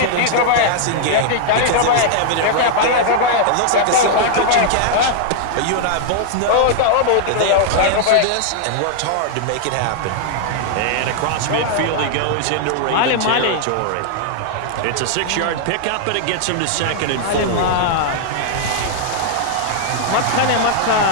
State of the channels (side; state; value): both; different; correlation -0.01